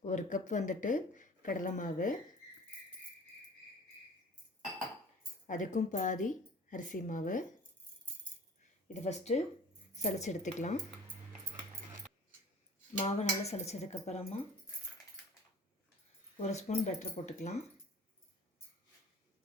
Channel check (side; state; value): both; normal; correlation 0.45